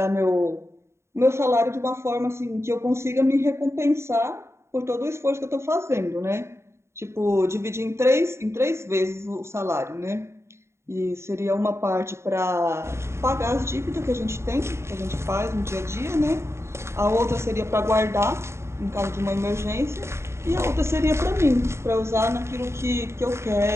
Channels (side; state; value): left; late; 0.13 ms